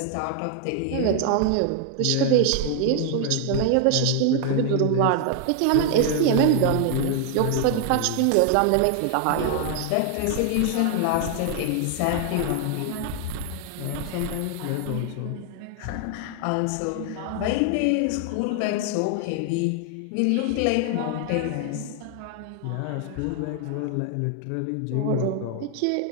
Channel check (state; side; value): different; both; correlation 0.00